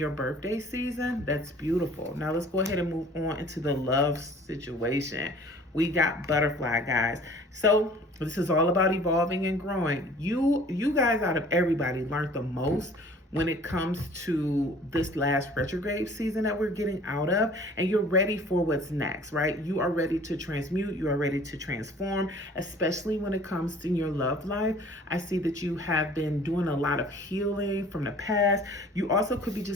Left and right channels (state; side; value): normal; both; correlation 0.50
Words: birthday season. That's beautiful. Now let's go ahead and move on into the love situation. We got butterfly, guys. So this is all about evolving and growing. You guys, out of everybody, learned the most when it comes to this last retrograde season that we're getting out of, and you're ready for what's next, right? You are ready to transmute, you are ready to transform, especially when it comes to your love life. I see that you have been doing a lot of healing from the past. You also could be